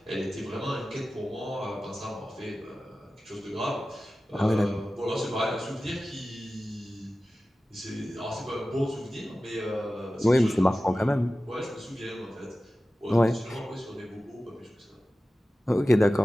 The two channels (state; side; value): normal; both; correlation 0.95